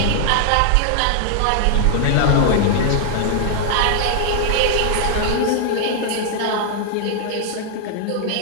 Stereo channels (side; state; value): both; different; correlation 0.00